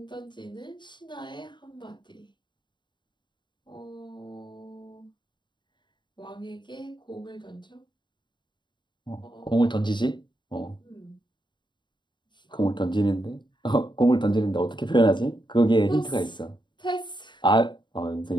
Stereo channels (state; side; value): late; right; 0.22 ms